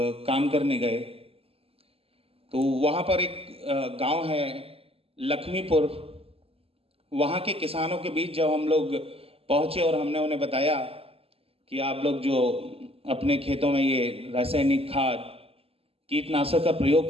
काम करने गए, तो वहाँ पर एक गांव है लक्ष्मीपुर। वहाँ के किसानों के बीच जब हम लोग पहुँचे और हमने उन्हें बताया कि आप लोग जो अपने खेतों में ये रासायनिक खाद, कीटनाशक का प्रयोग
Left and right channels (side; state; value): left; late; 0.28 ms